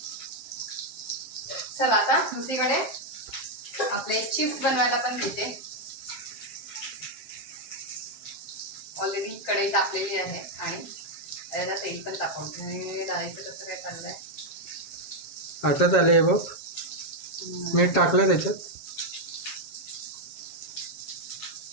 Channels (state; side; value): late; right; 7.4 ms